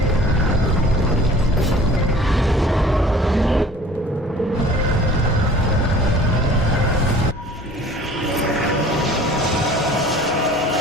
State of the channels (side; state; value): both; normal; correlation 0.48